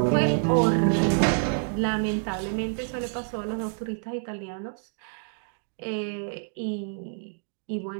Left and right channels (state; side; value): silent; left; 60 dB below the other